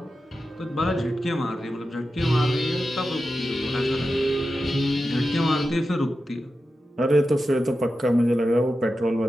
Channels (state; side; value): normal; both; correlation 0.91